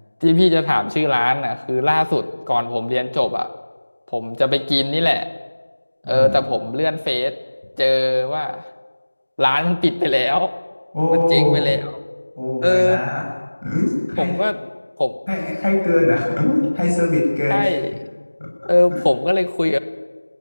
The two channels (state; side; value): inverted; both; correlation -1.00